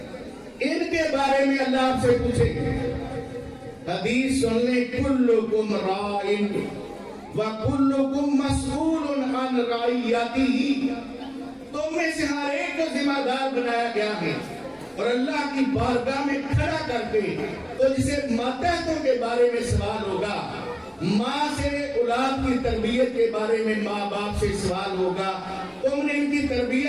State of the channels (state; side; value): identical; both; correlation 1.00